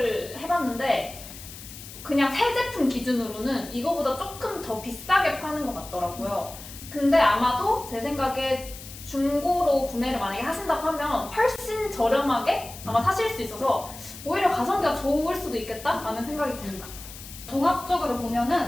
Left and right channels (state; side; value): noise; left; hiss, 14 dB below the sound